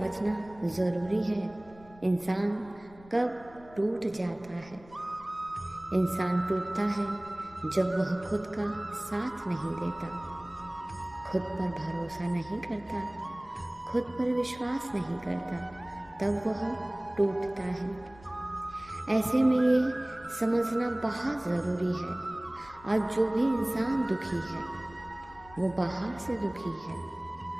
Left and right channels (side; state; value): left; noise; rumble, 22 dB below the sound